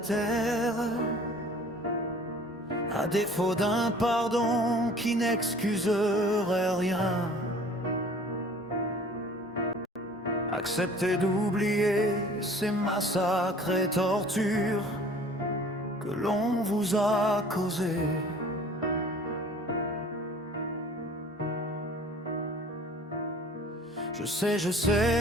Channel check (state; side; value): normal; both; correlation 0.49